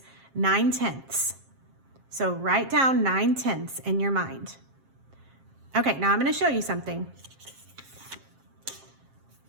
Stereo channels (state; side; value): late; left; 7.5 ms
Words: 9/10. So write down 9/10 in your mind. Okay, now I'm going to show you something.